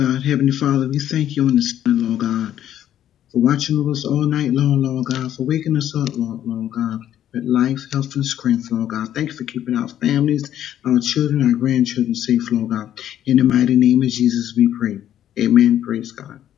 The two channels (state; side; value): quieter; right; 11.1 dB